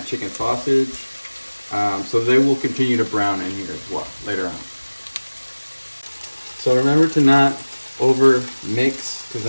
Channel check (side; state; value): both; inverted; correlation -1.00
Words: chicken sausage. So they will continue to brown in here as well later on. So remember to not over mix, because